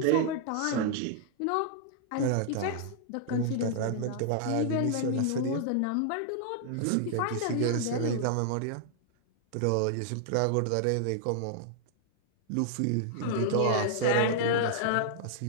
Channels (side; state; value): both; different; correlation -0.01